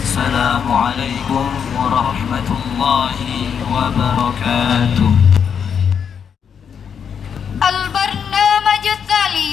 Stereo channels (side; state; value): right; quieter; 7.3 dB